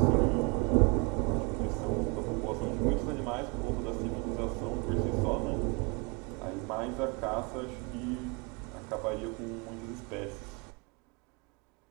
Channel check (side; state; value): left; quieter; 30.9 dB